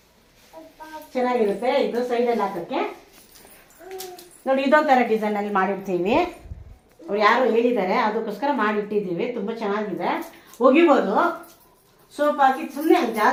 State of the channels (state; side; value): identical; both; correlation 1.00